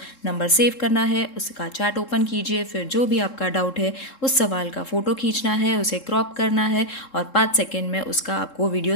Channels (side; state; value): right; late; 3.7 ms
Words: नंबर सेव करना है, उसका चैट ओपन कीजिए, फिर जो भी आपका डाउट है उस सवाल का फ़ोटो खींचना है, उसे क्रॉप करना है और 5 सेकेंड में उसका आपको